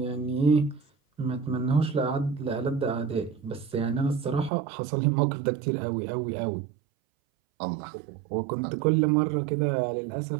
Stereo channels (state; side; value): drops out; left; at 4.5 s